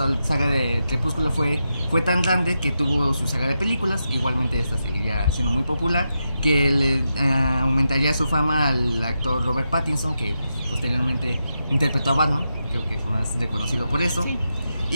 de Crepúsculo fue tan grande que tuvo su saga de películas. Igualmente esta seguiría siendo muy popular, que le aumentaría su fama al actor Robert Pattinson, que posteriormente interpretó a Batman, creo que es más reconocido por eso. Sí.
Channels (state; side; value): inverted; both; correlation -0.87